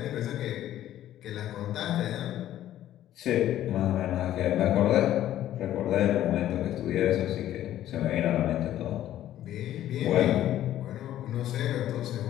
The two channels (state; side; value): quieter; right; 12.6 dB